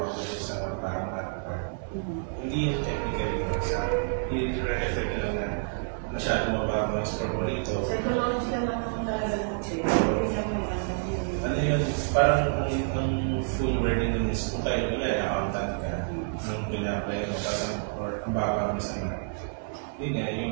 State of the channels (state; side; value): silent; left; 59 dB below the other